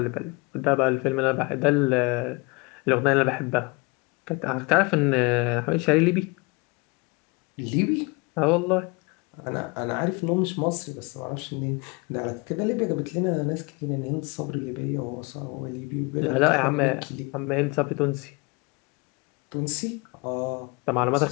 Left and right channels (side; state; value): right; quieter; 28.2 dB